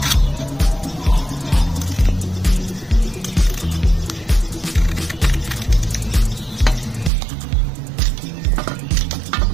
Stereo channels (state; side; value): drops out; left; at 7.1 s